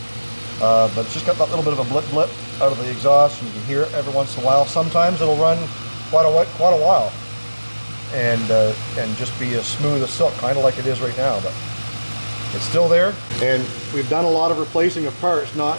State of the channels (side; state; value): both; inverted; correlation -1.00